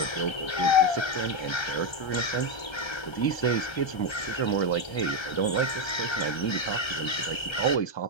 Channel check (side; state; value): right; late; 1.3 ms